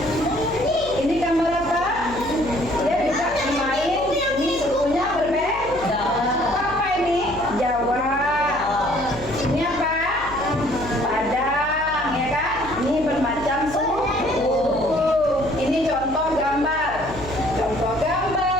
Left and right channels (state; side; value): noise; left; hum, 15 dB below the sound